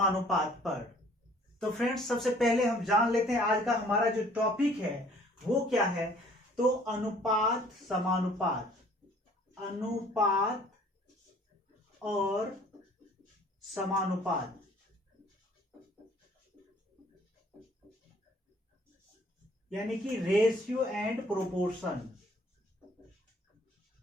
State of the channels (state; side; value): normal; both; correlation 0.56